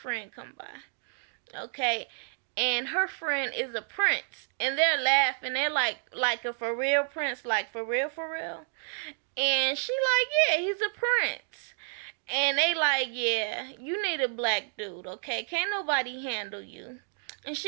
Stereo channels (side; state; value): left; silent; digital silence